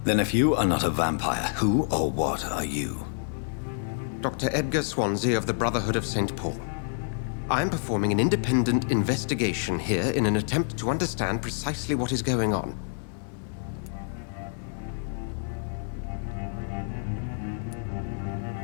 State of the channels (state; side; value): silent; right; 57 dB below the other